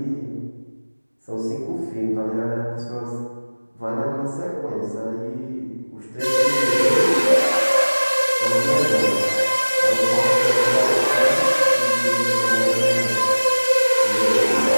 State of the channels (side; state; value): both; inverted; correlation -1.00